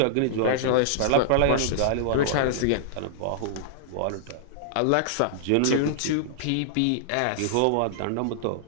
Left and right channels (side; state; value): both; different; correlation -0.01